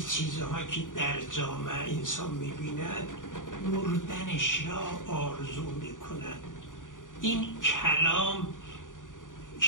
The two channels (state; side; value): late; right; 0.88 ms